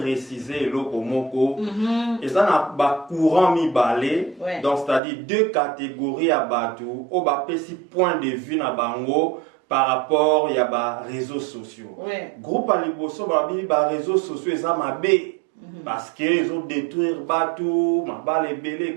le komoko. Et ça n'a pas courant mi balé. Donc c'est-à-dire deux catégories à bateau. Au bas petit point de vue na bango par rapport il y a ba réseaux sociaux. Groupe aliboso ba réseaux sociaux ça m'a bé. Parce qu'ils ont détruit bateau, ma balle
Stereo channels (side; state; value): left; drops out; at 5.0 s